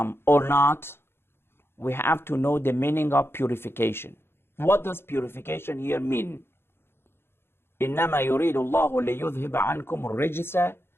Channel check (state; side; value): late; right; 0.11 ms